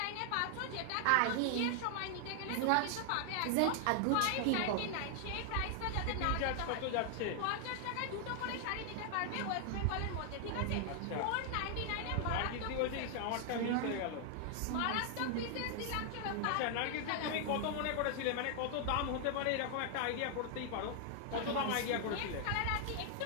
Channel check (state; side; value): different; both; correlation 0.00